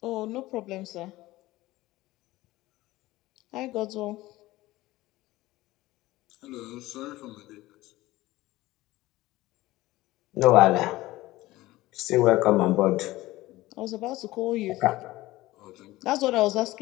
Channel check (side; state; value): right; quieter; 17.9 dB